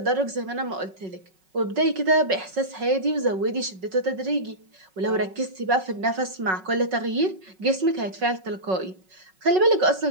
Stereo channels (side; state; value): left; late; 5.4 ms